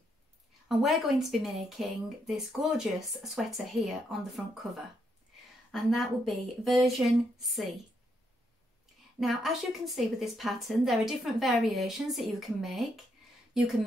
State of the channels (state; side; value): normal; both; correlation 0.77